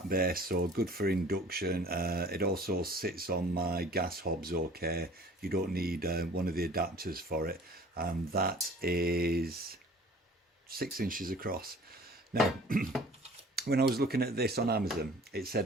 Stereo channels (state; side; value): normal; both; correlation 0.48